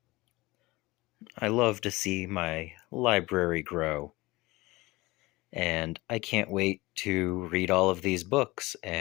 I love to see my library grow. and I can't wait to read all of these books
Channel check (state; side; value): quieter; right; 21.3 dB